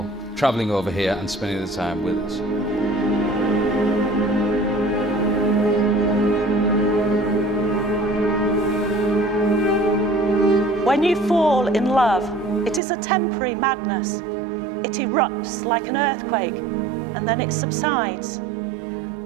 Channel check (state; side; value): drops out; left; at 12.8 s